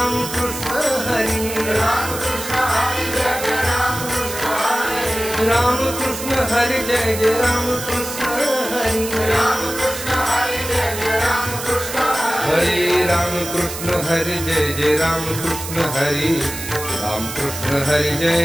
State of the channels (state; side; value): noise; right; hiss, 8 dB below the sound